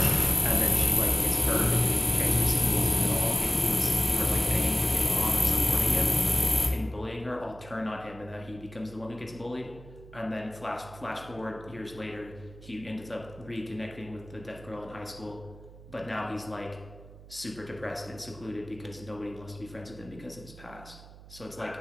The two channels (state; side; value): noise; right; hum, 19 dB below the sound